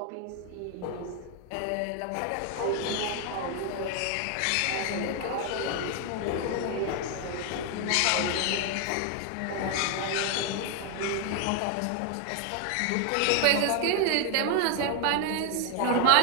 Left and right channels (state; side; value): different; both; correlation 0.00